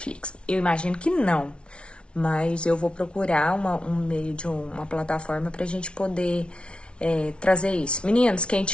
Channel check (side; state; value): right; late; 0.058 ms